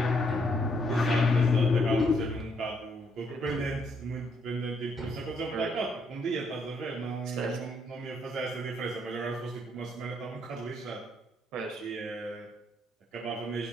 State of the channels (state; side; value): normal; both; correlation 0.72